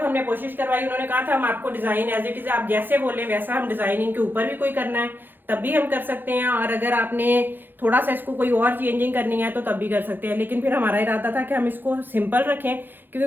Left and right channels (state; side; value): late; left; 0.094 ms